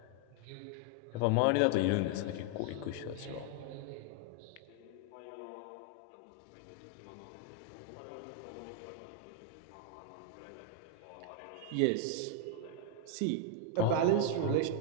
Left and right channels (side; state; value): both; different; correlation 0.00